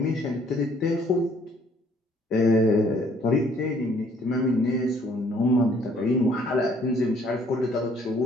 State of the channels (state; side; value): normal; both; correlation 0.61